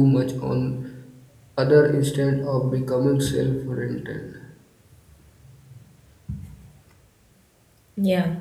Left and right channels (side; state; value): both; identical; correlation 1.00